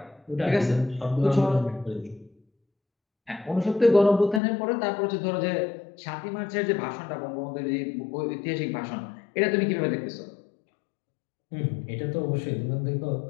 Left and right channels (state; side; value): drops out; right; at 4.4 s